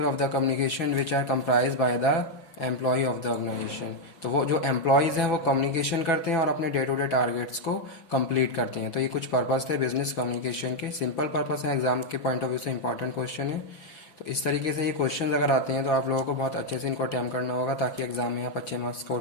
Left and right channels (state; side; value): late; right; 5.8 ms